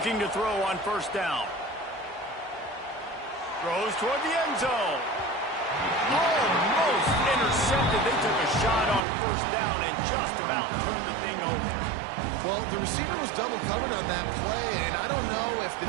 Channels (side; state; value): left; drops out; at 9.0 s